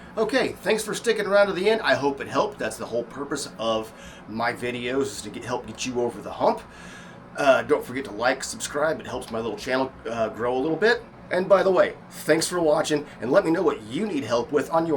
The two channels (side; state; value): both; identical; correlation 1.00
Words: Okay, thanks for sticking around to the end. I hope it helped. That's the whole purpose of my videos, is to help get you over the hump. Don't forget to like, subscribe. It helps my little channel grow a little bit. And by the way, thanks for watching, and let me know what you need help with on